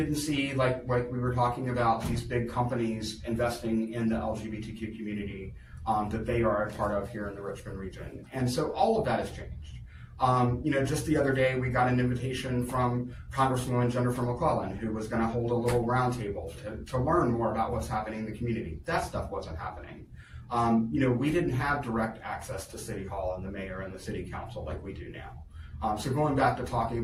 see, like we were talking about, these big companies investing in the LGBTQ community that they are a part of here in the Richmond region. And so all of that has changed. Just the other day, we got an invitation from Congresswoman Jennifer McClellan, who was going to hold a little roundtable to learn more about what's happening in the community. That stuff wasn't happening. We didn't have direct access to City Hall and the mayor and the city council like we do now. So going back to talking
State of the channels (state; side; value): identical; both; correlation 1.00